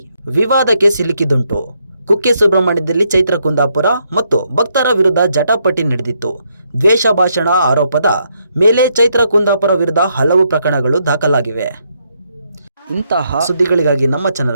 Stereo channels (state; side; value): inverted; both; correlation -0.76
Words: ವಿವಾದಕ್ಕೆ ಸಿಲುಕಿದುಂಟು. ಕುಕ್ಕೆ ಸುಬ್ರಹ್ಮಣ್ಯದಲ್ಲಿ ಚೈತ್ರ ಕುಂದಾಪುರ ಮತ್ತು ಭಕ್ತರ ವಿರುದ್ಧ ಜಟಾಪಟಿ ನಡೆದಿತ್ತು. ದ್ವೇಷ ಭಾಷಣ ಆರೋಪದ ಮೇಲೆ ಚೈತ್ರ ಕುಂದಾಪುರ ವಿರುದ್ಧ ಹಲವು ಪ್ರಕರಣಗಳು ದಾಖಲಾಗಿವೆ. ಇಂತಹ ಸುದ್ದಿಗಳಿಗಾಗಿ ನಮ್ಮ